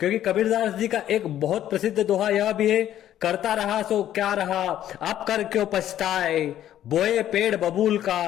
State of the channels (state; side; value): quieter; right; 11.8 dB